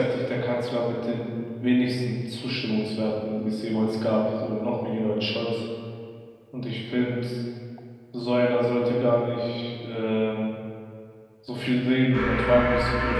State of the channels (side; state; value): both; identical; correlation 1.00